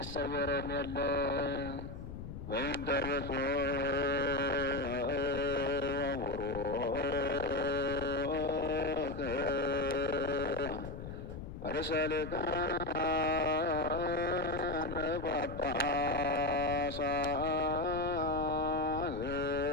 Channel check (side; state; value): left; noise; rumble, 9 dB below the sound